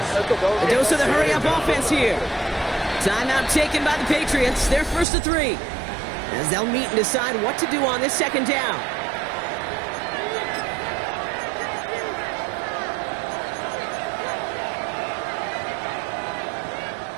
A dose of the hurry-up offense here. Timeout taken by the Patriots. They're 1st to 3. As they'll meet and decide what to do on this 2nd down.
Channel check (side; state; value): left; drops out; at 5.1 s